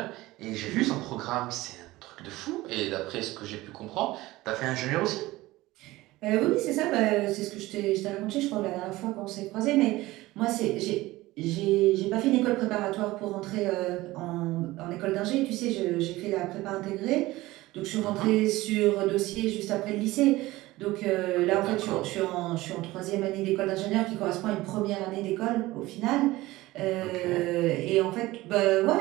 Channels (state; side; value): quieter; left; 18.5 dB